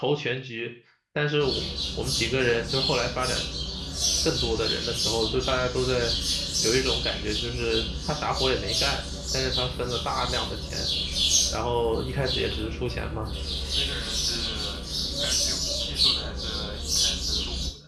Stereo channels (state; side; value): identical; both; correlation 1.00